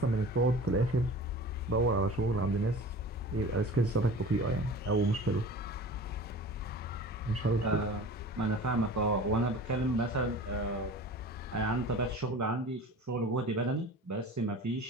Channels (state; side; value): normal; both; correlation 0.39